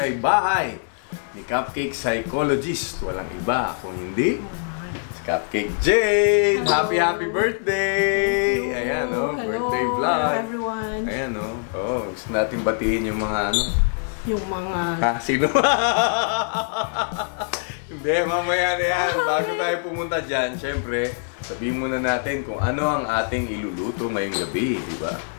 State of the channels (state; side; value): silent; right; 63 dB below the other